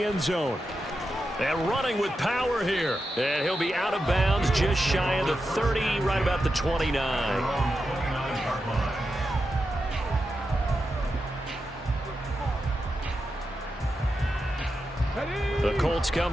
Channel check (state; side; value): normal; both; correlation 0.89